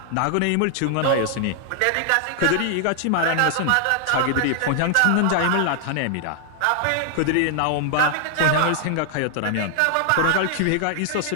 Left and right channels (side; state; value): both; different; correlation 0.00